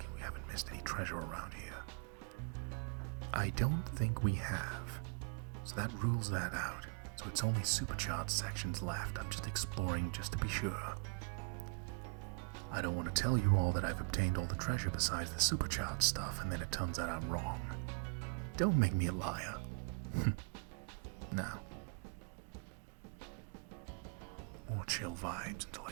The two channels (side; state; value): left; quieter; 35.0 dB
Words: we haven't missed any treasure around here. I don't think we have, so that rules that out. So it's only supercharged sections left. I'm just exploring just to be sure. I don't want to tell you all that I've obtained all the treasure besides the supercharged stuff, and then it turns out I'm wrong. Don't make me a liar. Now, more chill vibes until I